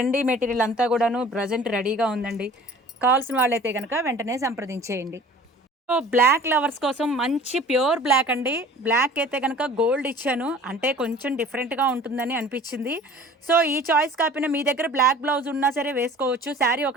మెటీరియల్ అంతా కూడాను ప్రెజెంట్ రెడీగా ఉందండి. కావాల్సిన వాళ్ళైతే గనక వెంటనే సంప్రదించేయండి. సో, బ్లాక్ లవర్స్ కోసం మంచి ప్యూర్ బ్లాక్ అండి. బ్లాక్ అయితే గనక గోల్డ్ ఇచ్చాను. అంటే కొంచెం డిఫరెంట్‌గా ఉంటుందని అనిపిచ్చింది. సో, ఈ చాయిస్ కాకపోయినా మీ దగ్గర బ్లాక్ బ్లౌజ్ ఉన్నా సరే వేసుకోవచ్చు. శారీ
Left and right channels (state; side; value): normal; both; correlation 0.46